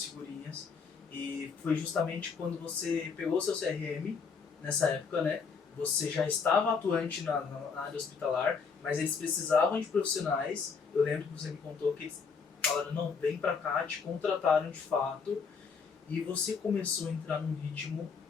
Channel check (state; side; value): quieter; right; 5.5 dB